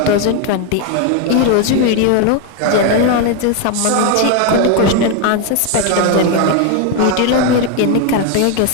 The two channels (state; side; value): different; both; correlation 0.01